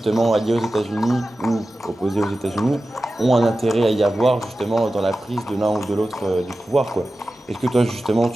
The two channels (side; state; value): both; normal; correlation 0.94